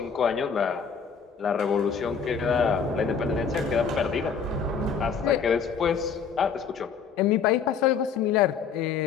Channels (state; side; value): quieter; right; 6.3 dB